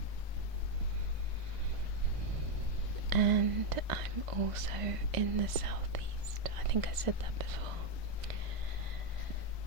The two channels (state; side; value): late; left; 2.0 ms